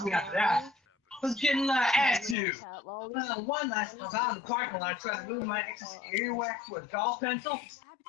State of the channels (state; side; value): drops out; right; at 2.4 s